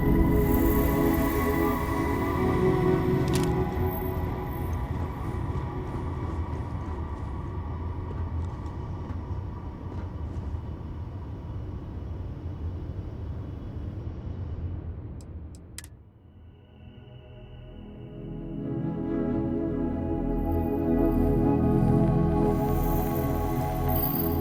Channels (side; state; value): both; identical; correlation 1.00